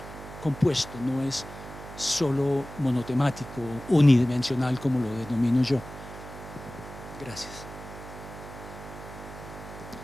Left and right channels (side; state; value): right; noise; hum, 13 dB below the sound